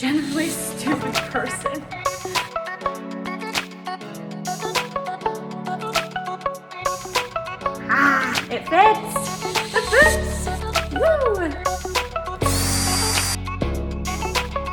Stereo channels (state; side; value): identical; both; correlation 1.00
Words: a stupid person. It fits! It fits! Woo!